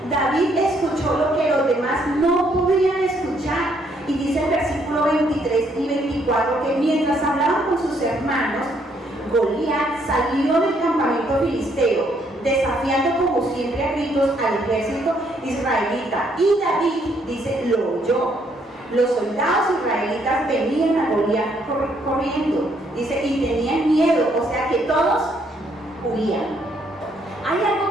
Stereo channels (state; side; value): normal; both; correlation 0.70